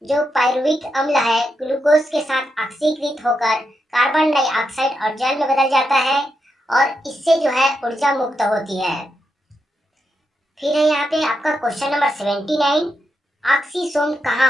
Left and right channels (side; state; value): both; normal; correlation 0.84